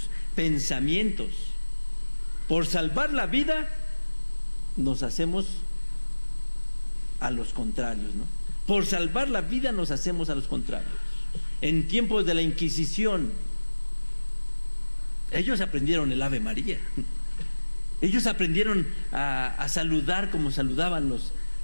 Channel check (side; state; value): both; inverted; correlation -1.00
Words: pensamientos. Por salvar la vida nos hacemos a los contrarios, ¿no? Por salvar la vida nos hacemos a los contrarios. En tiempos de la Inquisición, ellos aprendieron el Ave María. Ellos aprendieron a saludar como saludaban